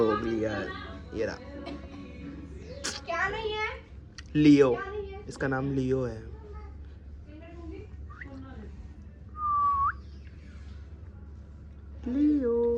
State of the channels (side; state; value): both; identical; correlation 1.00